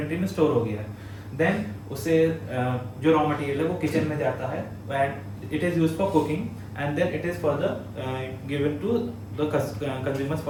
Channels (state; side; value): identical; both; correlation 1.00